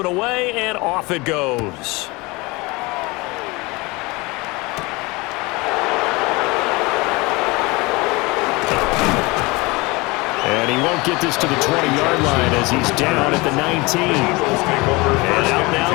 away, and off it goes. And he won't get this to the 20-yard line as he's down at the 19. And out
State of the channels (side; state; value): right; quieter; 24.4 dB